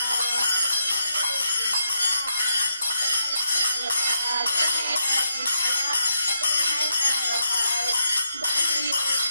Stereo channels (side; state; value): both; inverted; correlation -0.80